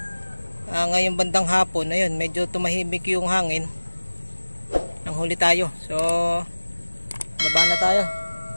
Ngayong bandang hapon, ayun, medyo tumahimik yung hangin. Nang huli tayo. So, baba na tayo.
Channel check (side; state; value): both; inverted; correlation -1.00